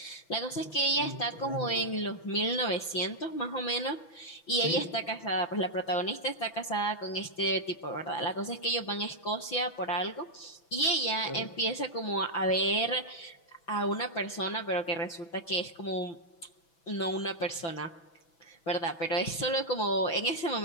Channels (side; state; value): right; late; 6.0 ms